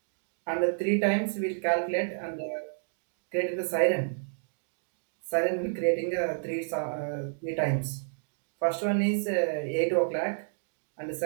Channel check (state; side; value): silent; left; digital silence